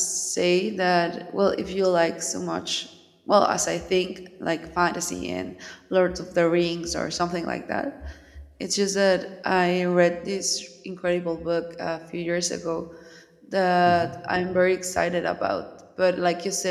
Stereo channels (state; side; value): identical; both; correlation 1.00